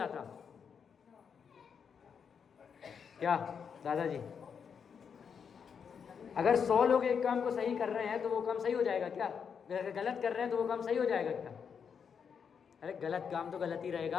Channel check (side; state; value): right; quieter; 6.8 dB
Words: क्या दादाजी, अगर 100 लोग एक काम को सही कर रहे हैं तो वो काम सही हो जाएगा क्या? अगर गलत कर रहे हैं तो वो काम सही हो जाएगा क्या? अरे गलत काम तो गलत ही